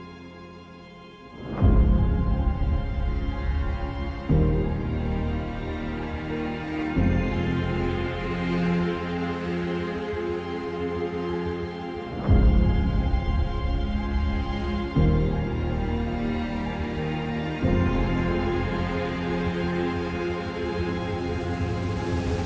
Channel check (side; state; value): both; identical; correlation 1.00